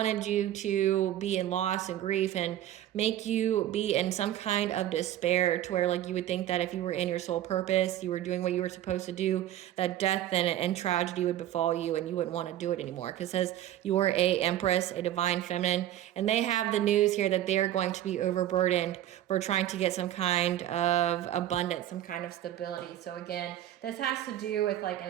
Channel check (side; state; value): left; quieter; 12.7 dB